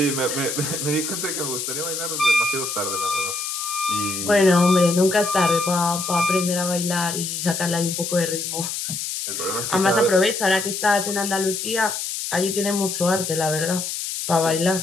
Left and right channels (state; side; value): noise; left; hiss, 4 dB below the sound